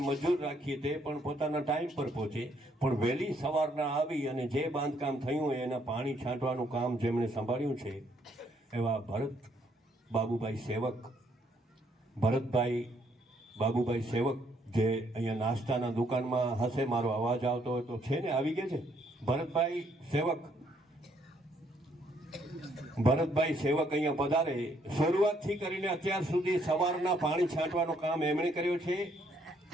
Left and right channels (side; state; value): both; normal; correlation 0.69